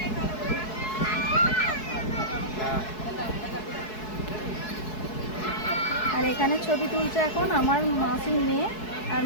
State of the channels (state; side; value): late; right; 4.7 ms